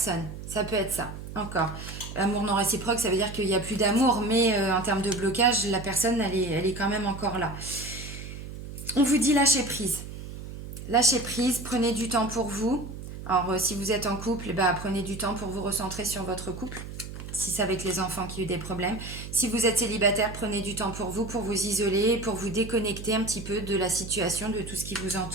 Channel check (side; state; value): right; noise; hum, 10 dB below the sound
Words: Ça peut être ça, encore. Amour non réciproque, ça veut dire qu'il n'y a plus d'amour, mais en termes de blocage, la personne, elle est quand même encore là. On vous dit lâcher prise. Lâchez prise, prenez du temps pour vous. Alors, si vous êtes en couple, bah, prenez du temps pour vous recentrer sur votre couple. Si c'est avec les enfants qui ont eu des problèmes. Si vous êtes célibataire, prenez du temps pour vous isoler, pour vous déconnecter un petit peu de la situation, de tout ce qui vous